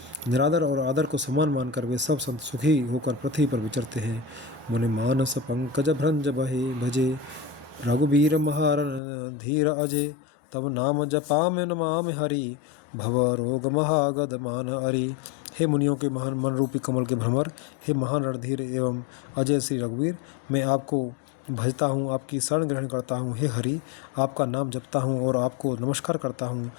निरादर और आदर को समान मानकर वे सब संत सुखी होकर पृथ्वी पर विचरते हैं। मुनि मानस पंकज भ्रंज बहे भजे, रघुबीर महारन धीर अजय। तब नाम जपा में नमाम हरि, भव रोग महागद मान हरि। हे मुनियों के महान मन रूपी कमल के भ्रमर, हे महान रणधीर एवं अजय श्री रघुवीर, मैं आपको भजता हूँ, आपकी शरण ग्रहण करता हूँ। हे हरि, आपका नाम जपता हूँ और आपको नमस्कार करता हूँ।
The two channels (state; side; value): drops out; right; at 9.0 s